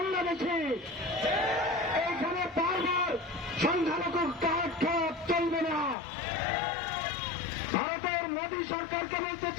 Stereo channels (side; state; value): right; drops out; at 6.0 s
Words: এইখানে বারবার সংখ্যালঘু কার্ড খাওয়া চলবে না। ভারতের মোদী সরকারকে বলতে